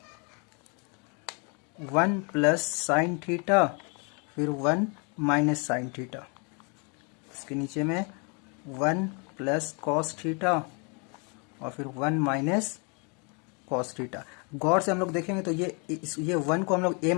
1 प्लस साइन थीटा फिर 1 माइनस साइन थीटा। इसके नीचे में 1 प्लस कॉस थीटा और फिर 1 माइनस कॉस थीटा। गौर से हम लोग देखेंगे तो ये 1 को हम लोग a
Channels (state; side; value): quieter; right; 34.5 dB